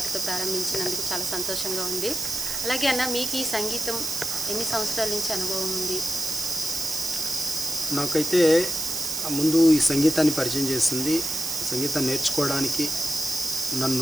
ప్రారంభించినందుకు చాలా సంతోషంగా ఉంది. అలాగే అన్న, మీకు ఈ సంగీతం ఎన్ని సంవత్సరాల నుంచి అనుభవం ఉంది? నాకైతే ముందు ఈ సంగీతాన్ని పరిచయం చేసింది, సంగీతం నేర్చుకోవడానికి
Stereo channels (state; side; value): noise; right; hiss, 3 dB below the sound